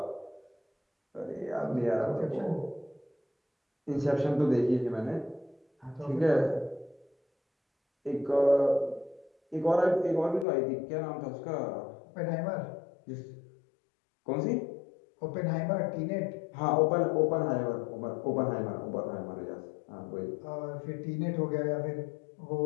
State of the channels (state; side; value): drops out; right; at 10.5 s